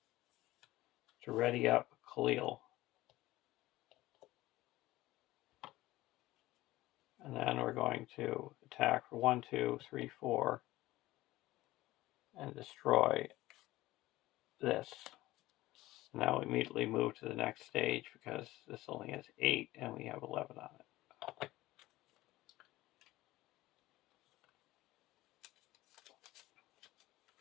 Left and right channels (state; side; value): quieter; right; 17.4 dB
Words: to ready up Khalil. And then we're going to attack for 1, 2, 3, 4 and destroy this. Now we immediately move to the next stage because this only has 8 and we have 11 on it.